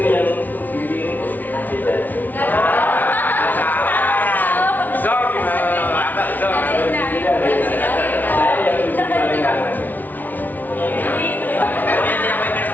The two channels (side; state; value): right; late; 0.082 ms